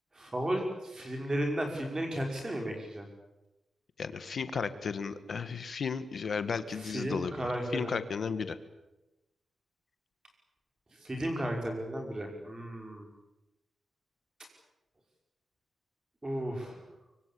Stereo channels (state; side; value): normal; both; correlation 0.88